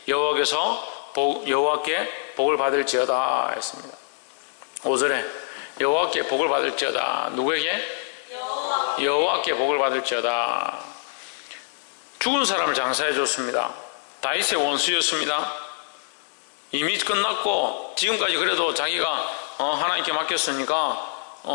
여호와께 복을 받을지어다 했습니다. 5절에 여호와께 복을 받을지어다. 누구에게? 여호와께 복을 받을지어다. 죽은 사람을 장사해 줬습니다. 다윗의 원수였습니다. 이미 끝났고 지금까지 그래도 자기가 하나님께 맡겼으니까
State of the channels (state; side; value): silent; right; digital silence